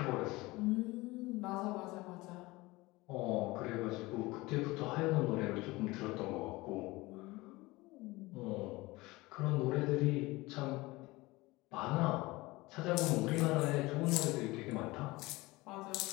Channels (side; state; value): right; quieter; 21.3 dB